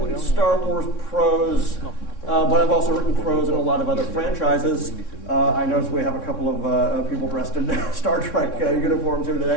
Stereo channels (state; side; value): late; right; 3.6 ms